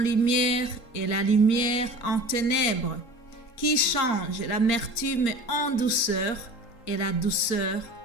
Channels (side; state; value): right; late; 3.8 ms